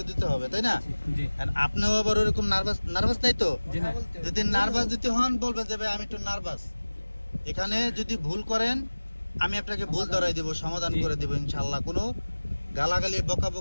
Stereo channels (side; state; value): both; inverted; correlation -1.00